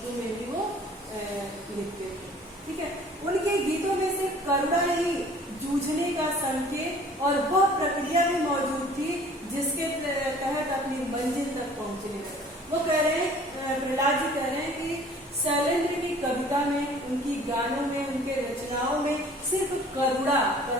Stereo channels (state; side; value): normal; both; correlation 0.51